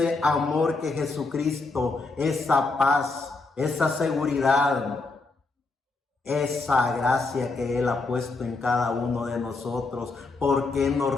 amor que Jesucristo, esa paz, esa seguridad, esa gracia que Él ha puesto en cada uno de nosotros, ¿por qué no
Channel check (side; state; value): right; quieter; 3.6 dB